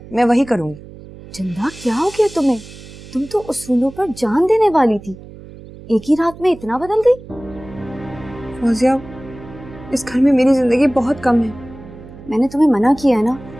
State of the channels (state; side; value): noise; right; hum, 17 dB below the sound